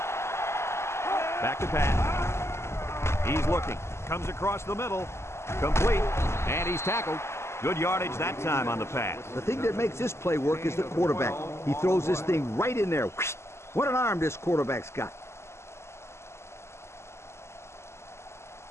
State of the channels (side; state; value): right; late; 0.13 ms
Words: Back to pass. He's looking. Comes across the middle. Complete. And he's tackled. Good yardage that time on the pass. The thing that makes this play work is the quarterback. He throws this thing right in there. What an arm this quarterback's got.